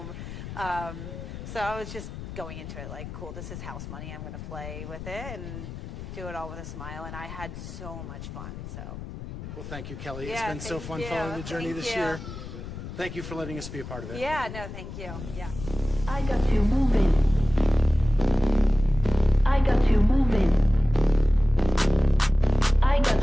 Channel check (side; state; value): left; noise; rumble, 10 dB below the sound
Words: So I was just going into it like, cool, this is house money. I'm going to play with it and do it all with a smile. And I had so much fun. So. Well, thank you, Kelly. Yeah, it's been so fun following the journey this year. Thank you for letting us be a part of it. Yeah, no, thank you. Yeah. I got you moving. I got you moving. I